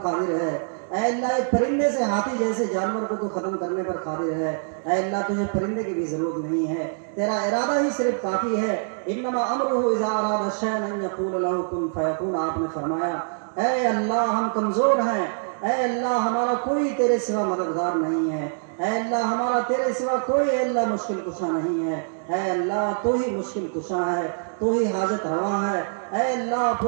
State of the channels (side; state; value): left; silent; digital silence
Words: قادر ہے اے اللہ، ایک پرندے سے ہاتھی جیسے جانور کو تو ختم کرنے پر قادر ہے اے اللہ۔ تجھے پرندے کی بھی ضرورت نہیں ہے، تیرا ارادہ ہی صرف کافی ہے۔ انما امرہ اذا اراد شیئا ان یقول له کن فیکون، آپ نے فرمایا اے اللہ ہم کمزور ہیں اے اللہ، ہمارا کوئی تیرے سوا مددگار نہیں ہے اے اللہ، ہمارا تیرے سوا کوئی اے اللہ مشکل کشا نہیں ہے اے اللہ۔ تو ہی مشکل کشا ہے، تو ہی حاجت روا ہے اے اللہ۔